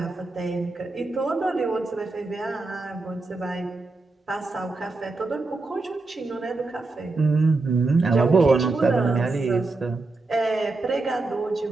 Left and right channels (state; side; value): quieter; left; 3.4 dB